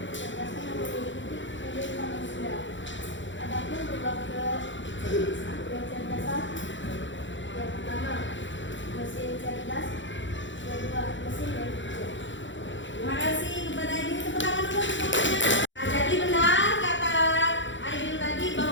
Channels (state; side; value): late; right; 0.54 ms